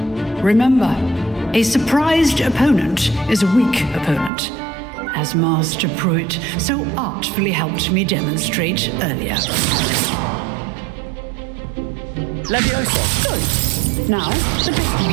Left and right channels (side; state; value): left; drops out; at 4.3 s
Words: Remember, a surprised opponent is a weak opponent, as Master Pruitt so artfully helped me demonstrate earlier. Levioso! Good. Now, the